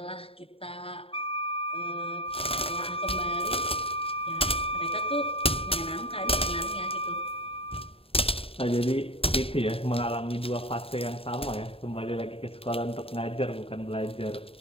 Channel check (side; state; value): right; late; 0.27 ms